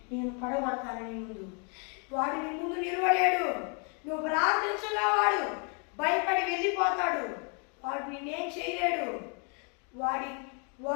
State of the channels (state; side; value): quieter; right; 37.9 dB